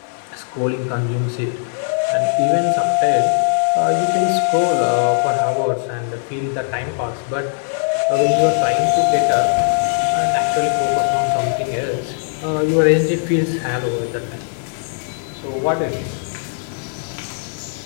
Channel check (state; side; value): silent; right; digital silence